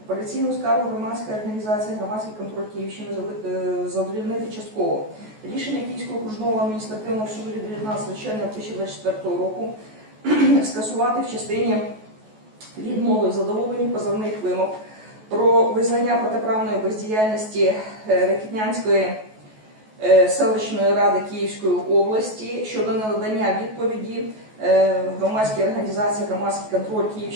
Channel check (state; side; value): late; left; 14 ms